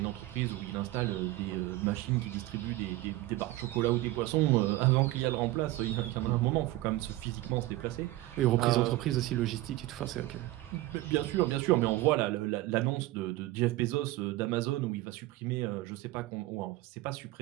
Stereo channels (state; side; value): quieter; left; 17.4 dB